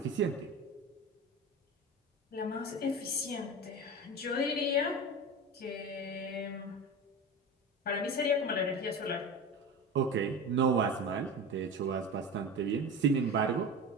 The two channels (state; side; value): normal; both; correlation 0.28